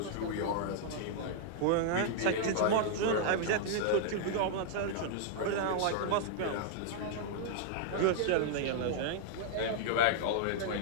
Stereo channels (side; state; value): both; different; correlation -0.01